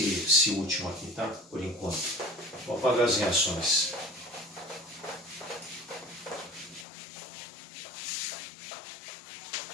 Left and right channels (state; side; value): drops out; right; at 6.9 s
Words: último aqui, tá? Por enquanto. Vou apagar as reações.